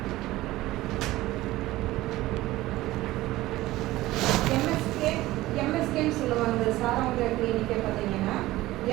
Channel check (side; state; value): left; quieter; 17.3 dB